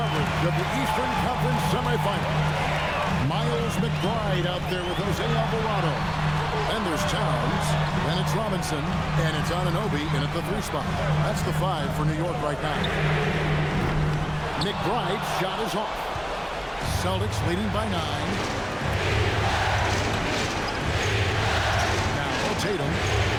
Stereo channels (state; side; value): identical; both; correlation 1.00